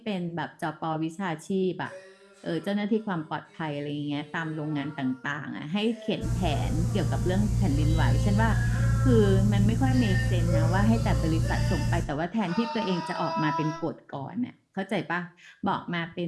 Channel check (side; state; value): both; identical; correlation 1.00